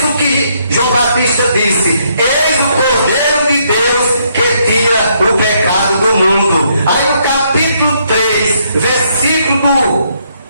que João Batista disse: eis o Cordeiro de Deus que tira o pecado do mundo. Aí no capítulo 3, versículo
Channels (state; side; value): inverted; both; correlation -0.72